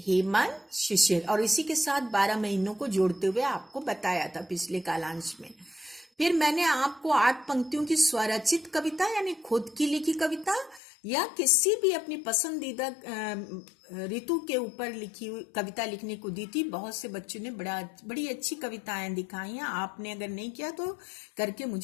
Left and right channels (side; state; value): right; drops out; at 10.8 s